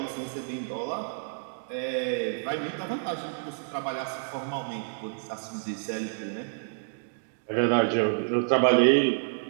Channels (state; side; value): silent; left; digital silence